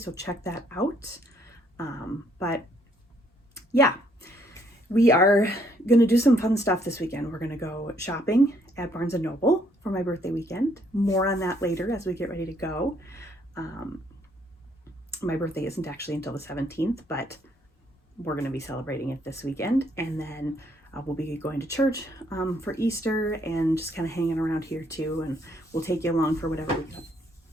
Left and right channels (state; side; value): normal; both; correlation 0.68